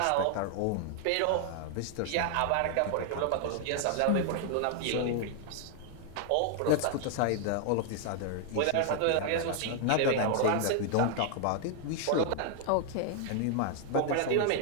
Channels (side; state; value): both; different; correlation 0.00